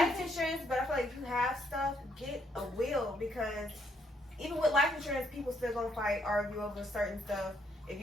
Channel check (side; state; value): both; normal; correlation 0.72